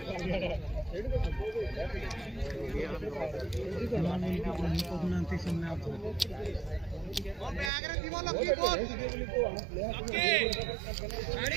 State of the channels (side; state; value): left; drops out; at 7.7 s